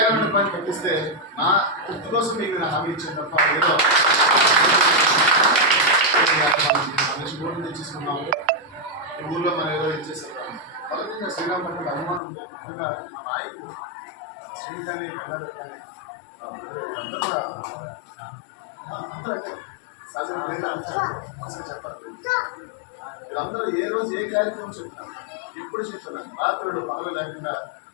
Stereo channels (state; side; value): drops out; right; at 12.2 s